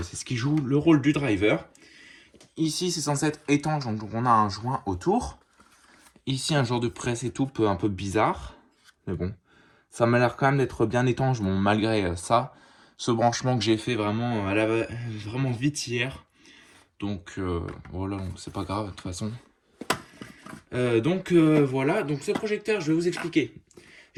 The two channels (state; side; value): identical; both; correlation 1.00